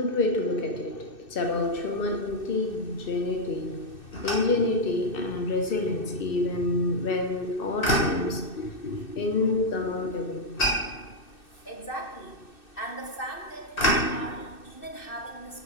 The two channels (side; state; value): right; late; 2.6 ms